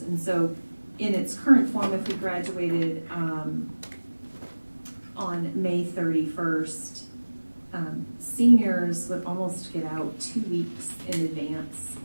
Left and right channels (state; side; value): inverted; both; correlation -1.00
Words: And so in its current form, if we graduated on May 31st, seniors would almost get out 2 weeks in advance